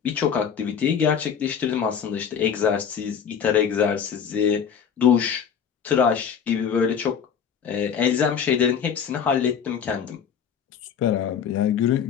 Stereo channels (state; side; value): quieter; right; 7.6 dB